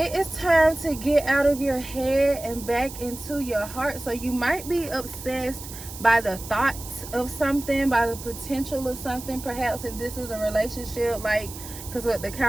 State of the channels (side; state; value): right; noise; hiss, 13 dB below the sound